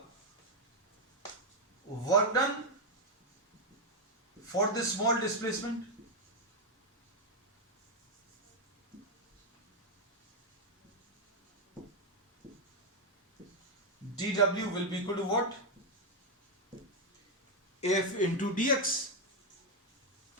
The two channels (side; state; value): both; normal; correlation 0.02